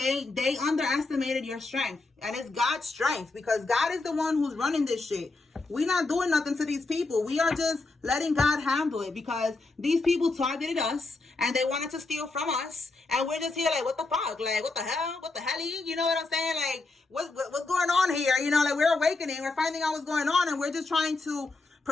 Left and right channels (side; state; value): right; quieter; 3.5 dB